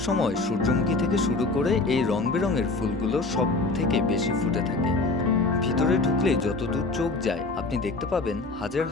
সময় সূর্যমুখী থেকে শুরু করে এই রং বেরঙের ফুলগুলো সব থেকে বেশি ফুটে থাকে। ভিতরে ঢুকলে যতদূর চোখ যায় আপনি দেখতে পাবেন হাজার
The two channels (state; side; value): quieter; right; 3.4 dB